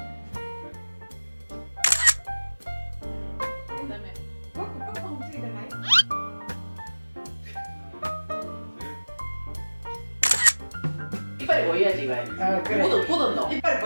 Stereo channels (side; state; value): both; inverted; correlation -1.00